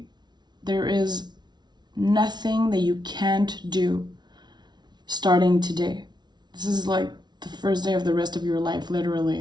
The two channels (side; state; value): left; late; 0.20 ms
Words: There is nothing that you can't do starting today. This is like the first day of the rest of your life,